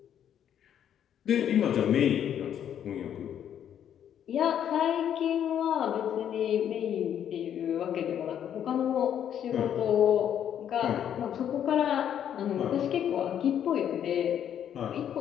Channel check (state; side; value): quieter; right; 9.6 dB